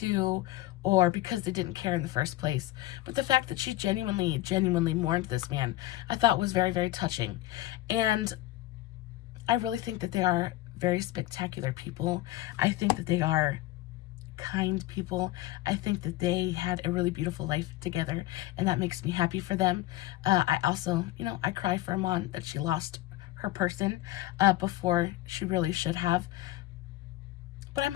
or because they didn't care in the first place. But the fact that she genuinely mourned this man, I thought was very, very touching. And I really think that they are very spectacular people. I think that they are kind people. I think that they had a really beautiful life together, and that makes me happy for them. I also, you know, I cry for Iman that she lost her person before she really should have. But I'm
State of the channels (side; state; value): right; quieter; 16.7 dB